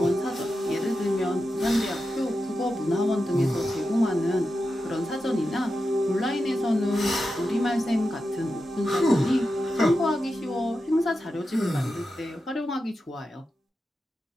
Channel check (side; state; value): both; normal; correlation 0.90